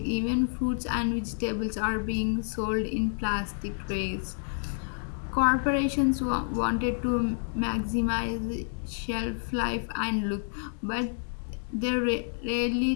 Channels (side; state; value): right; silent; 59 dB below the other